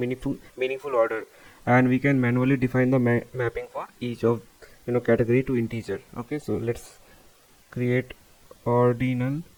order, and we can manually define the mapping for each of category to integer. Okay, so let's create ordinal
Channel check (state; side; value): identical; both; correlation 1.00